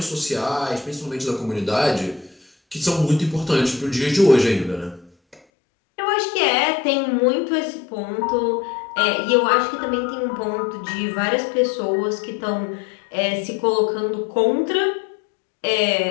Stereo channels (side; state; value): right; drops out; at 5.4 s